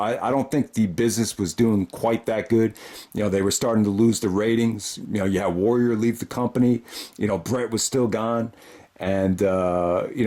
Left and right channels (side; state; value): both; identical; correlation 1.00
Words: don't think the business was doing quite that good. You know, they were starting to lose the ratings. You know, you had Warrior leave the company. You know, Brett was still gone. And, you